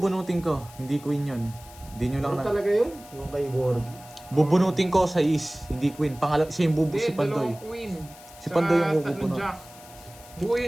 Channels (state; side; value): noise; left; hiss, 21 dB below the sound